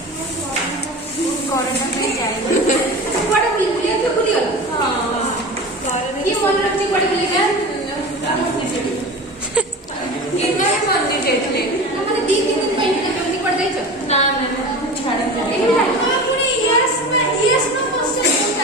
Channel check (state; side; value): normal; both; correlation 0.32